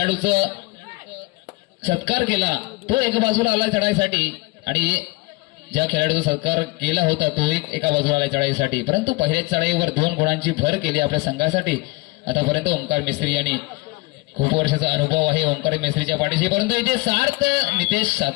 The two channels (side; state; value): right; quieter; 23.2 dB